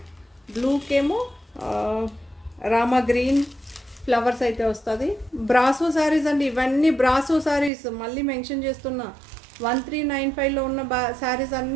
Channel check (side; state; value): left; drops out; at 7.7 s